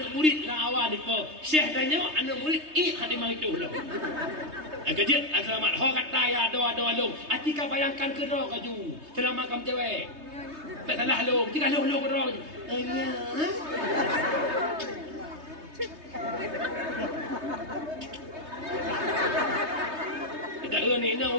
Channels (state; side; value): late; left; 3.2 ms